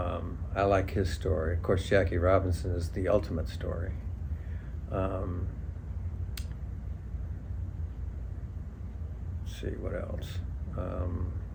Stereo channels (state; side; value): identical; both; correlation 1.00